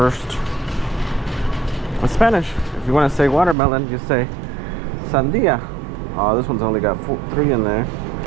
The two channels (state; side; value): drops out; left; at 3.6 s